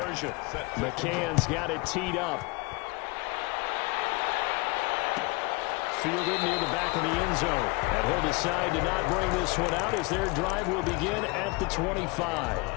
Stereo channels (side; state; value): right; quieter; 26.5 dB